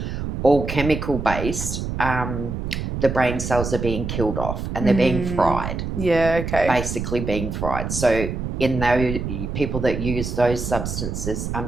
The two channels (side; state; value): right; noise; rumble, 4 dB below the sound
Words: all chemical based, the brain cells are being killed off and they're being fried. Yeah, okay. Basically being fried. So in those people that use those substances,